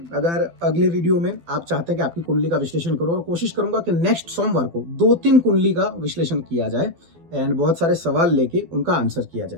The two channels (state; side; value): late; left; 12 ms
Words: अगर अगले वीडियो में आप चाहते हैं कि आपकी कुंडली का विश्लेषण करो, और कोशिश करूंगा कि नेक्स्ट सोमवार को 2-3 कुंडली का विश्लेषण किया जाए एंड बहुत सारे सवाल लेके उनका आंसर किया